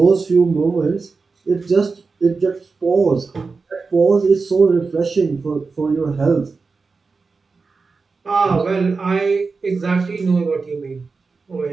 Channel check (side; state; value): left; quieter; 4.4 dB